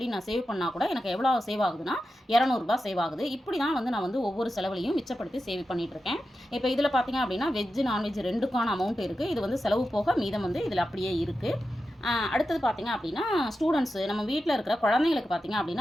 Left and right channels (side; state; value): both; normal; correlation 0.91